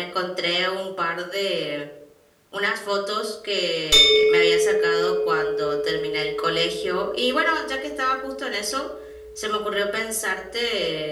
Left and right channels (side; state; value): both; identical; correlation 1.00